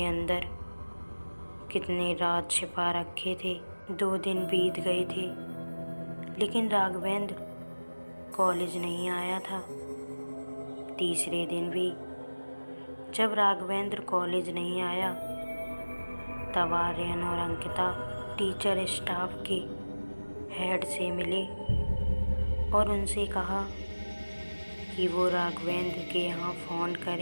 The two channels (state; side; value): inverted; both; correlation -1.00